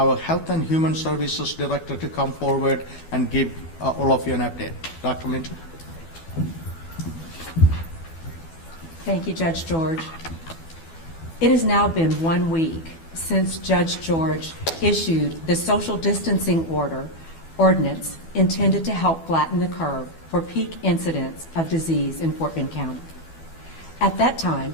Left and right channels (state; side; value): late; right; 12 ms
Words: Health and Human Services Director, to come forward and give all of you an update. Dr. Minter. Thank you, Judge George. It has now been 1 week since Judge George issued the social distancing ordinance intended to help flatten the curve for peak incidents of disease in Fort Bend County. At that time,